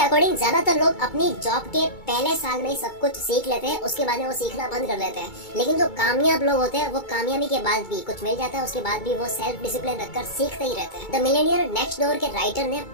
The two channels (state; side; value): late; right; 2.2 ms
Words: अकॉर्डिंग ज्यादातर लोग अपनी जॉब के पहले साल में ही सब कुछ सीख लेते हैं, उसके बाद में वो सीखना बंद कर देते हैं। लेकिन जो कामयाब लोग होते हैं वो कामयाबी के बाद भी कुछ मिल जाता है, उसके बाद भी वो सेल्फ डिसिप्लिन रखकर सीखते ही रहते हैं। द मिलेनियर नेक्स्ट डोर के राइटर ने